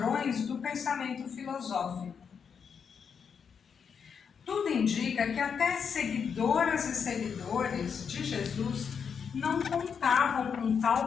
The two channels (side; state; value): right; quieter; 6.7 dB